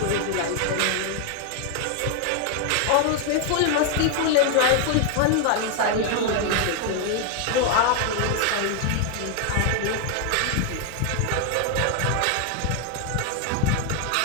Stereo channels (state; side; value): different; both; correlation 0.00